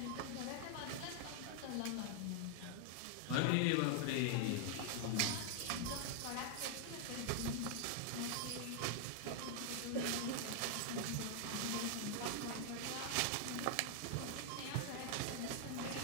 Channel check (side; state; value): both; different; correlation 0.00